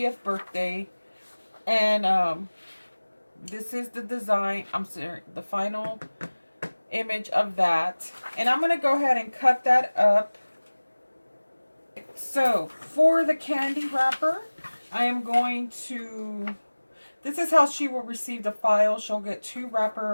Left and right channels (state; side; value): inverted; both; correlation -1.00